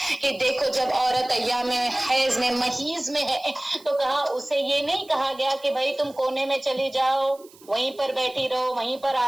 کہ دیکھو جب عورت ایام حیض میں محیض میں ہے تو کہا اسے یہ نہیں کہا گیا کہ بھائی تم کونے میں چلی جاؤ، وہیں پر بیٹھی رہو، وہیں پر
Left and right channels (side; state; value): right; noise; hiss, 25 dB below the sound